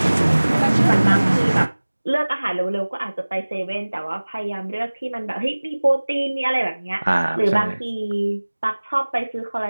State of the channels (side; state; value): both; inverted; correlation -1.00